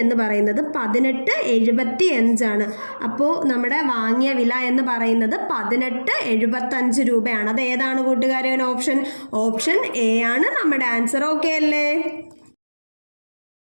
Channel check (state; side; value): inverted; both; correlation -1.00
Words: എന്ന് പറയുന്നത് 1875 അപ്പോൾ നമ്മുടെ വാങ്ങിയ വില എന്ന് പറയുന്നത് 1875 രൂപയാണ്. അത് ഏതാണ് കൂട്ടുകാരെ ഓപ്ഷൻ? ഓപ്ഷൻ എ ആണ് നമ്മുടെ ആൻസർ. ഓക്കെ അല്ലേ?